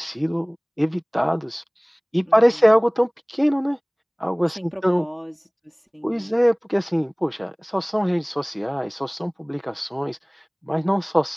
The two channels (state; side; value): identical; both; correlation 1.00